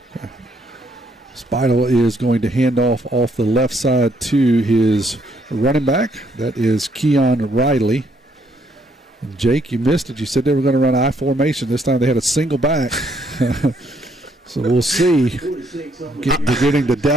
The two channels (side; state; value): both; normal; correlation 0.70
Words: Okay. Spidel is going to hand off the left side to his running back. That is Keon Riley. And Jake, you missed it. You said they were going to run I formation. This time they had a single back. So we'll see. Beginning to